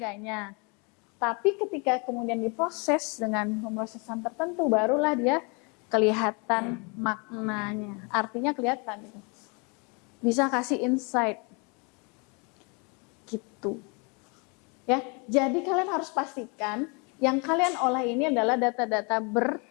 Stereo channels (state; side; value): quieter; right; 32.2 dB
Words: Tapi ketika kemudian diproses dengan pemrosesan tertentu, barulah dia kelihatan maknanya. Artinya kelihatan gitu. Bisa kasih insight. Gitu. Ya, jadi kalian harus pastikan yang kalian olah ini adalah data-data